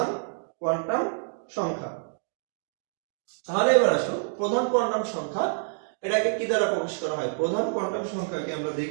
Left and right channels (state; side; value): silent; left; digital silence